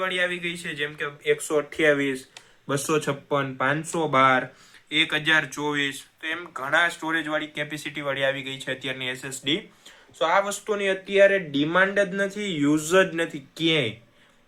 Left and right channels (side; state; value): both; identical; correlation 1.00